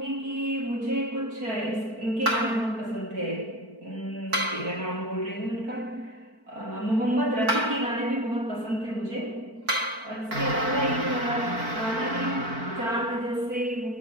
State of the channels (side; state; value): left; late; 4.5 ms